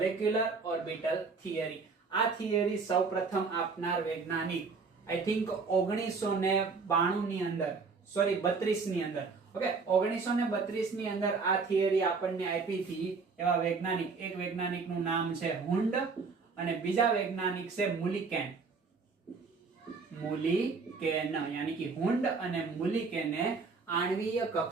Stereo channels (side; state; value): left; quieter; 4.7 dB